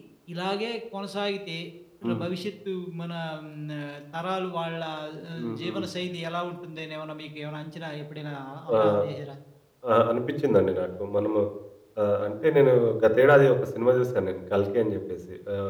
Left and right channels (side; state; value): both; identical; correlation 1.00